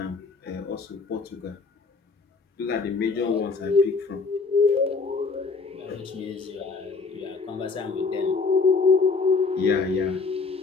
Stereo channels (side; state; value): right; quieter; 4.5 dB